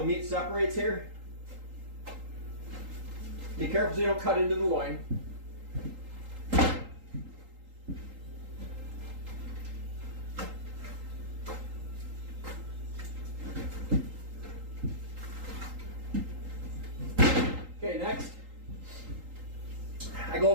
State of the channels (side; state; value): left; late; 3.8 ms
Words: meat separates here. Be careful so you don't cut into the loin. Okay, next, I